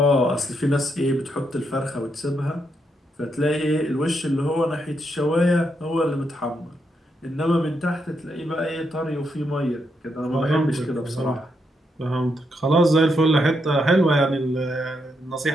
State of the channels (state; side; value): normal; both; correlation 0.80